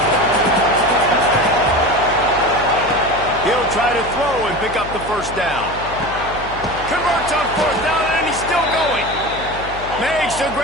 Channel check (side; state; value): left; noise; hum, 14 dB below the sound